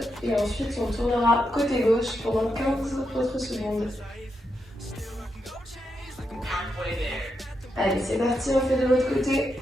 et ensuite on tournera côté gauche pendant 15 autres secondes. Allez, c'est parti, on fait de l'autre côté.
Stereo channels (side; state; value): both; normal; correlation 0.84